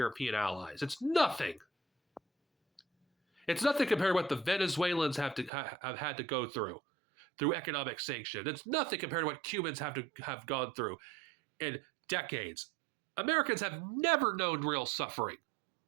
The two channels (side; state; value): left; drops out; at 5.5 s